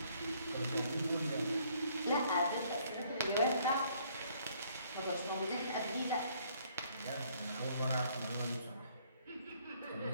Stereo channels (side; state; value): both; inverted; correlation -0.64